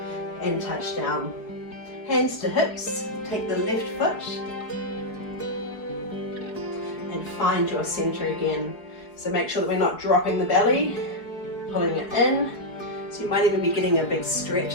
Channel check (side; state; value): right; late; 4.7 ms